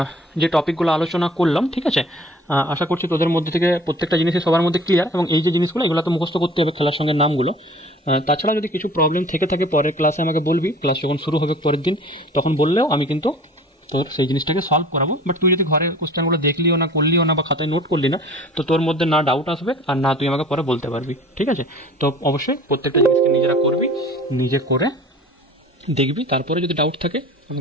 যে টপিকগুলো আলোচনা করলাম, ঠিক আছে, আশা করছি তোদের মধ্যে থেকে প্রত্যেকটা জিনিসই সবার মধ্যে ক্লিয়ার, এবং এই যে জিনিসগুলো এগুলো তো মুখস্থ করতে হবে খেলার সঙ্গে নামগুলো। তাছাড়া যদি কিছু প্রবলেম থেকে থাকে পরের ক্লাসে আমাকে বলবি, ক্লাস যখন শুরু হবে পরের দিন তখন বললেও আমি কিন্তু তোর সেই জিনিসটাকে সলভ করাবো। বাট তুই যদি ঘরে কোশ্চেনগুলো দেখলিও না, করলিও না, বা খাতায় নোট করলি না, তো তোর মধ্যে না ডাউট আসবে আর না তুই আমাকে পরে বলতে পারবি। ঠিক আছে, তো অবশ্যই প্রত্যেকটা জিনিসকে নিজেরা করবি, নিজে করে দেখবি, তারপরে যদি ডাউট থাকে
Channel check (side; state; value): both; normal; correlation 0.46